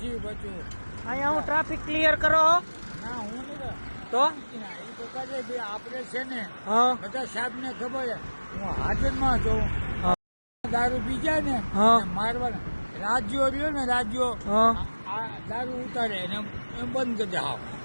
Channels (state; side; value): inverted; both; correlation -1.00